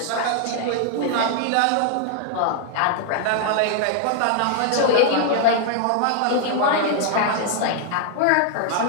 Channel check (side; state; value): both; different; correlation 0.00